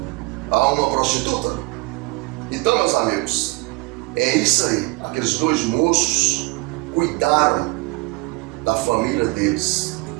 a uma prostituta? Então, meus amigos, é isso aí. Aqueles 2 moços cuidaram da família deles,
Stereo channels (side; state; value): left; quieter; 24.5 dB